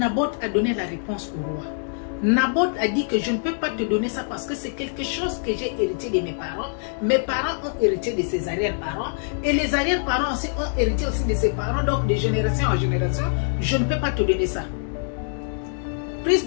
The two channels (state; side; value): silent; right; digital silence